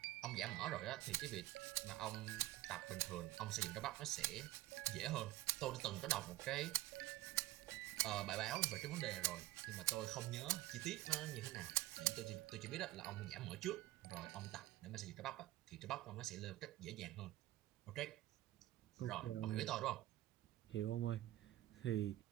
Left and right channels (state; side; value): quieter; left; 16.3 dB